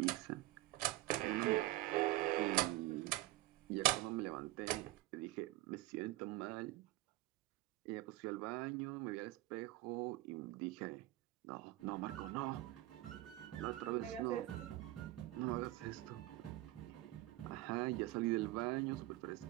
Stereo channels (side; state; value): left; quieter; 17.5 dB